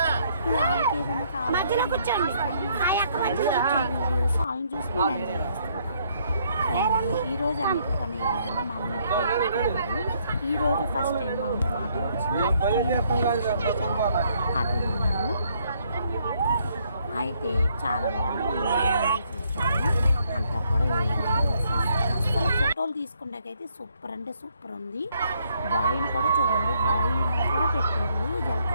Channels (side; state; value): both; inverted; correlation -0.69